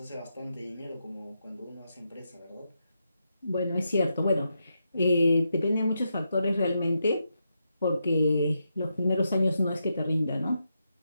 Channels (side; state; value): both; inverted; correlation -0.84